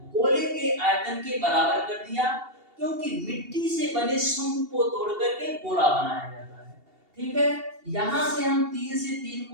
गोले के आयतन के बराबर कर दिया, क्योंकि मिट्टी से बने शंकु को तोड़ करके गोला बनाया जाता है, ठीक है। यहां से हम 3 से 3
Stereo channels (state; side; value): late; left; 2.8 ms